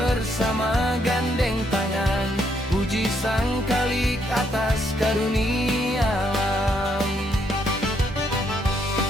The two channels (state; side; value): normal; both; correlation 0.74